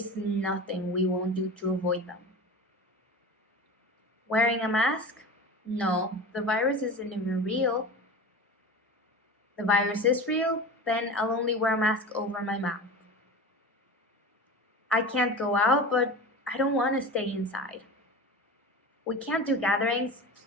nothing we won't do to avoid them? Wearing a mask? No, the virus isn't even real. The virus is real, then I'll only wear a mask over my mouth. I can't go out, but I don't want to stay inside. We can't do gatherings.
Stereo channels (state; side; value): normal; both; correlation 0.32